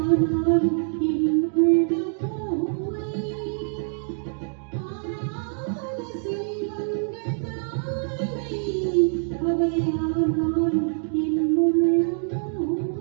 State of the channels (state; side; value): silent; left; 60 dB below the other